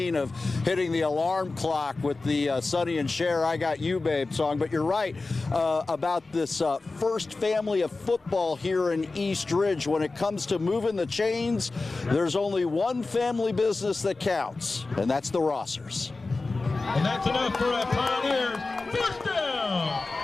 of hitting the alarm clock with the Sonny and Cher, I Got You Babe song. But you're right about this first family of football here in East Ridge. When it comes to moving the chains, there's only one family business that counts, and that's the Rossers. And that's enough for a Pioneers first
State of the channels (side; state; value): right; quieter; 3.6 dB